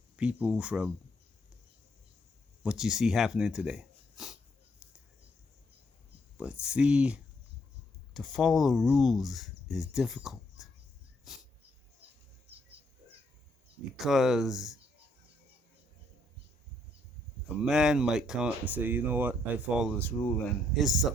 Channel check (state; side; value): normal; both; correlation 0.72